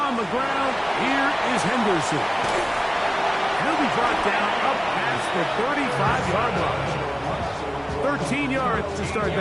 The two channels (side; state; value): both; identical; correlation 1.00